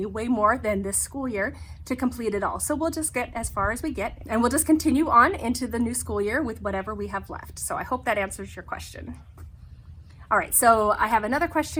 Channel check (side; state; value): both; identical; correlation 1.00